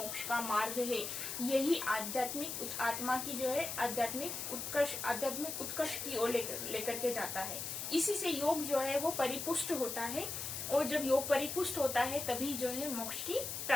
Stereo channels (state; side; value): noise; left; hiss, 5 dB below the sound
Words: का मार्ग है। यही आध्यात्मिक आत्मा की जो है आध्यात्मिक उत्कर्ष की ओर लेकर के जाता है। इसी से योग जो है वो परिपुष्ट होता है, और जब योग परिपुष्ट होता है तभी जो है मोक्ष की